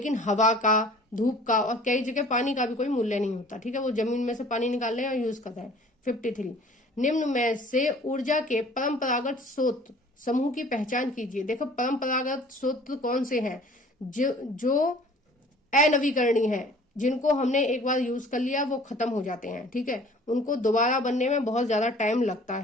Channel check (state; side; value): normal; both; correlation 0.50